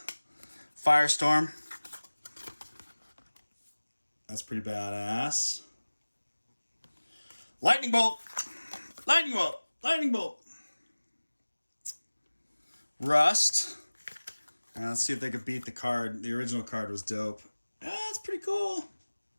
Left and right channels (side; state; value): both; inverted; correlation -1.00